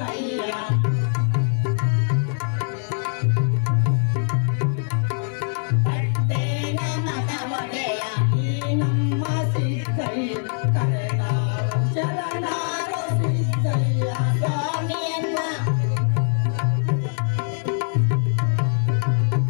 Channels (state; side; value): silent; right; 64 dB below the other